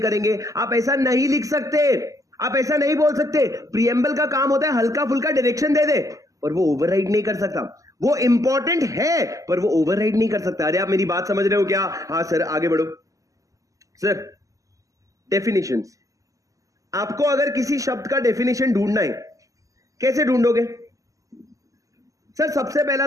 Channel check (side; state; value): left; late; 0.16 ms